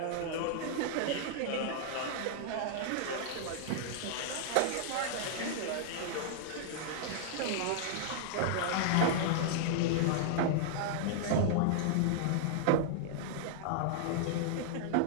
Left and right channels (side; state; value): both; different; correlation -0.01